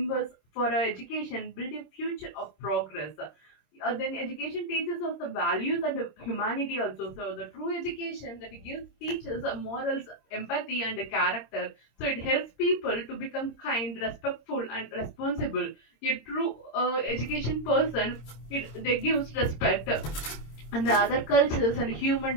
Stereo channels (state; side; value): late; right; 26 ms